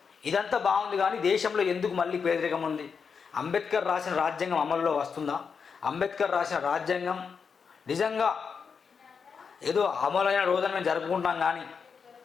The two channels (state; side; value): quieter; right; 5.9 dB